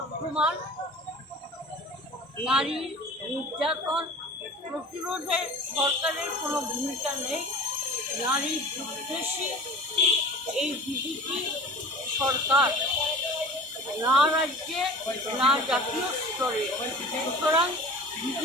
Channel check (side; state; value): both; normal; correlation 0.39